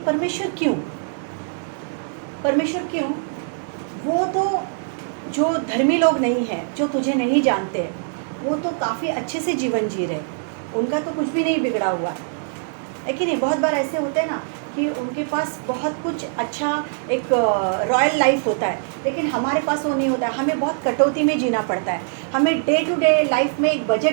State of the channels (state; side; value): silent; left; digital silence